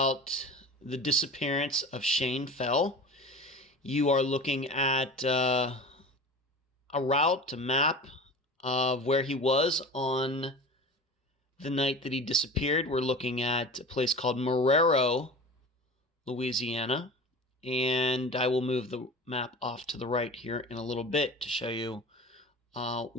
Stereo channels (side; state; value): both; normal; correlation 0.35